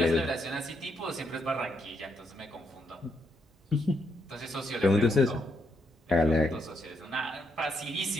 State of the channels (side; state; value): both; normal; correlation 0.77